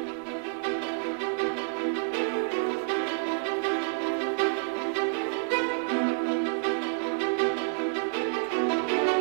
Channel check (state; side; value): silent; left; digital silence